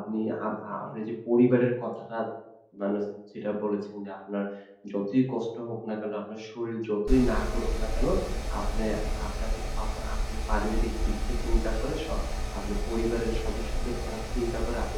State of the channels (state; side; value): identical; both; correlation 1.00